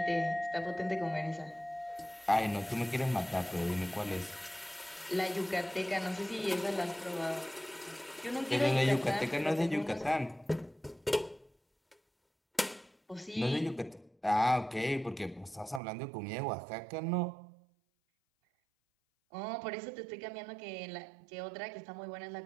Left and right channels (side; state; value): left; drops out; at 15.8 s